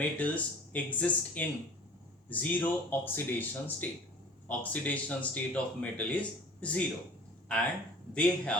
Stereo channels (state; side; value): normal; both; correlation 0.45